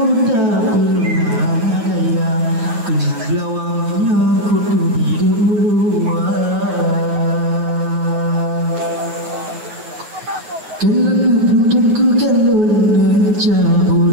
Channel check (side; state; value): left; late; 8.9 ms